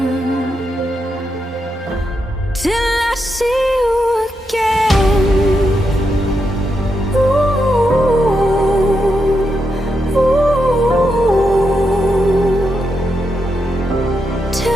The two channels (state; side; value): normal; both; correlation 0.84